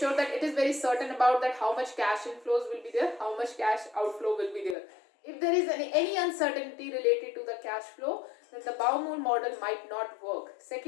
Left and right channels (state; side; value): drops out; right; at 4.8 s